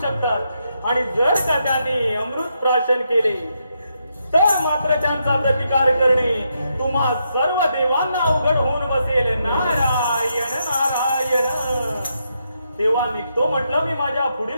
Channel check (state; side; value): inverted; both; correlation -0.81